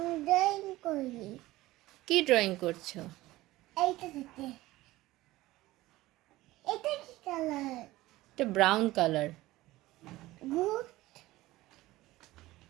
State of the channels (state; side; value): quieter; left; 17.7 dB